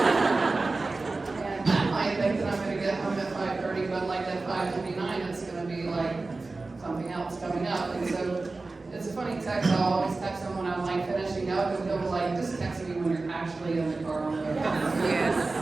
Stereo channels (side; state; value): left; quieter; 3.5 dB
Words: And I might think that I'm going to get home at 5:30, but like at 5:29, it's going to be like something else coming up. And so it's a funny text. I'll always text him when I'm like finishing up, and he'll be like, just text me when you're actually in the car on the way. Yes.